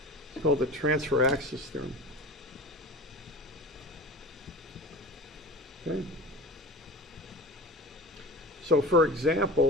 It's called the transfer axis theorem. Okay. So for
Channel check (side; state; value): both; normal; correlation 0.35